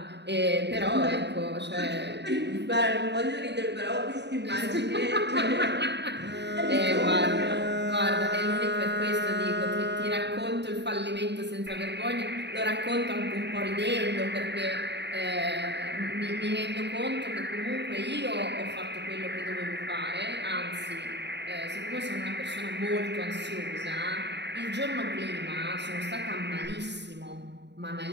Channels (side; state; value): left; late; 0.50 ms